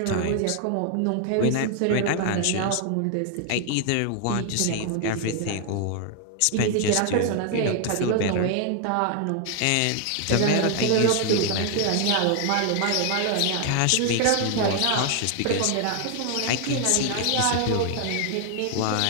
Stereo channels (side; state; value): both; different; correlation 0.00